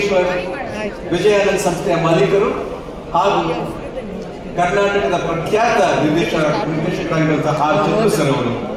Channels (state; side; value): identical; both; correlation 1.00